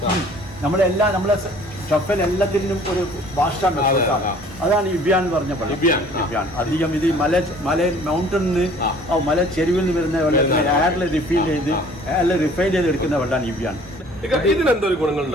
നമ്മളെല്ലാം നമ്മളെ ഷഫൽ എല്ലാത്തിനും ഒരു ഭാഷാണ്. അതാണ് ഇബിയാൻ എന്ന് പറഞ്ഞ വെള്ളം. ഇബിയാൻ അധികം ഇത് മല മൗണ്ടനിന്ന് മല ചെരുവിൽ നിന്ന് വരുന്ന വെള്ളത്തിന് എയറിൽ റിഫൈൻ ചെയ്ത് എടുക്കുന്ന വെള്ളമാണ് ഇബിയാൻ. ഇതിനെന്തൊരു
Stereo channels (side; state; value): both; normal; correlation 0.52